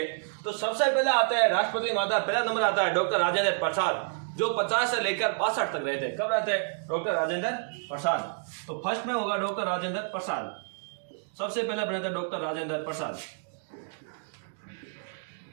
तो सबसे पहले आता है राष्ट्रपति माता, पहला नंबर आता है डॉक्टर राजेंद्र प्रसाद, जो 50 से लेकर 62 तक रहते। कब रहते हैं डॉक्टर राजेंद्र प्रसाद? तो फर्स्ट में होगा डॉक्टर राजेंद्र प्रसाद। सबसे पहले बने थे डॉक्टर राजेंद्र प्रसाद।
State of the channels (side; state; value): left; silent; digital silence